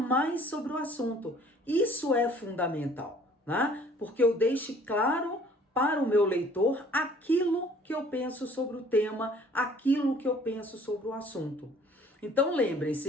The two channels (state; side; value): normal; both; correlation 0.55